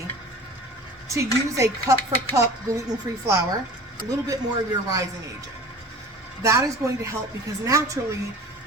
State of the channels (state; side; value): normal; both; correlation 0.40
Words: to use a cup for cup gluten-free flour, a little bit more of your rising agent. That is going to help because naturally